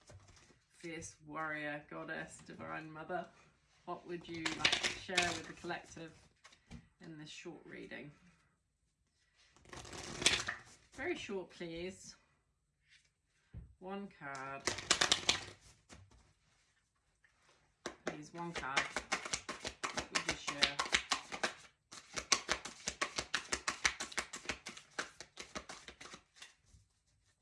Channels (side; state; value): both; identical; correlation 1.00